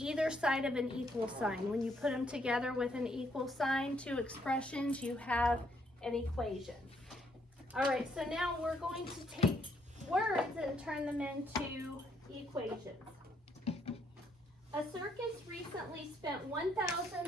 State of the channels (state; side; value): normal; both; correlation 0.71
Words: side of an equal sign. When you put them together with an equal sign, two expressions, you have an equation. All right, so now we're going to take words and turn them into equations. A circus recently spent